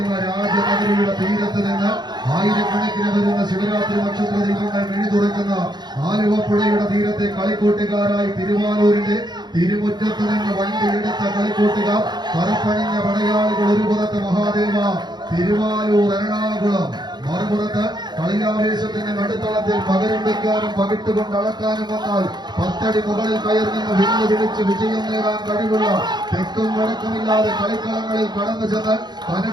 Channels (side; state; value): left; late; 0.21 ms